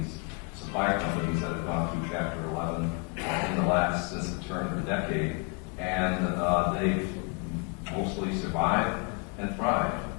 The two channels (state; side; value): quieter; right; 33.3 dB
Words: supplier companies that have gone through Chapter 11 since the turn of the decade, and they've mostly survived and thrived.